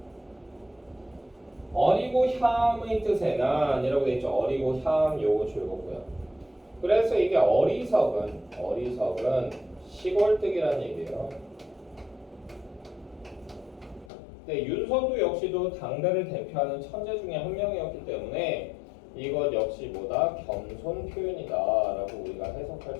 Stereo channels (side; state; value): right; drops out; at 14.1 s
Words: 어리고 향의 뜻의 난이라고 되어 있죠. 어리고 향 요거 즐겁고요. 그래서 이게 어리석은 시골뜨기라는 얘기예요. 네, 윤서도 역시도 당대를 대표하는 천재 중에 한 명이었기 때문에 이것 역시 뭐다? 겸손 표현이다 라고 우리가 해석할